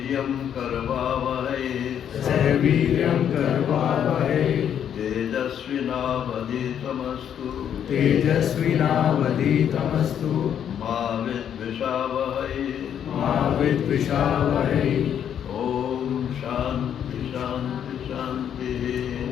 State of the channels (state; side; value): quieter; right; 9.1 dB